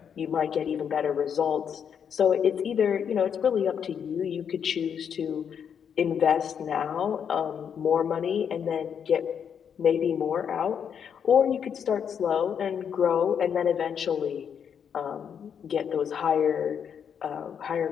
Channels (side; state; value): right; quieter; 7.7 dB